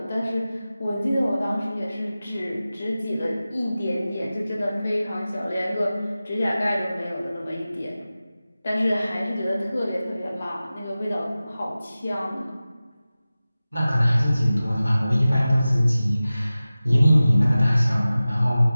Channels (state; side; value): inverted; both; correlation -0.96